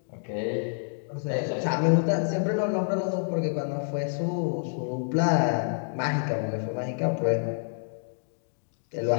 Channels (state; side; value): silent; right; digital silence